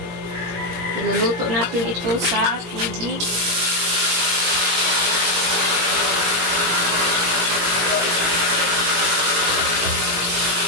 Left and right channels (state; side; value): late; left; 17 ms